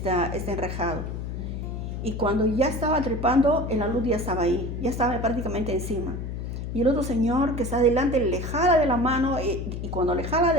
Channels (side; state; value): left; noise; hum, 5 dB below the sound